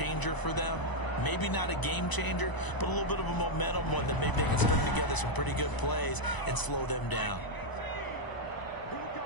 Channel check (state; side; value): late; right; 1.0 ms